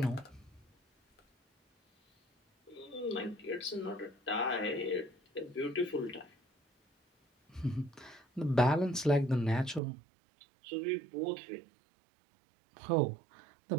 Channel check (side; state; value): left; drops out; at 9.8 s